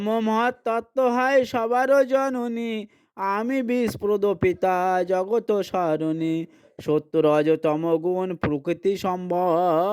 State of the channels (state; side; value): identical; both; correlation 1.00